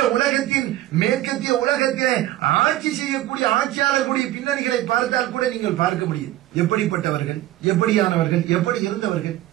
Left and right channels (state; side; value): quieter; left; 15.0 dB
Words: உலகத்தின் மேற்கத்திய உலகத்திலே ஆட்சி செய்யக்கூடிய ஆட்சியாளர்களுடைய பின்னணிகளை பார்த்தால் கூட நீங்கள் பார்க்க முடியும். எப்படிப்பட்டவர்கள், எப்படியானவர்கள், எப்படி இருந்தவர்கள்.